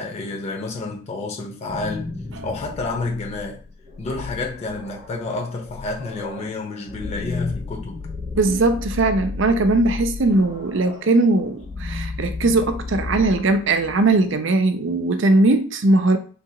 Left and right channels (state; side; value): normal; both; correlation 0.51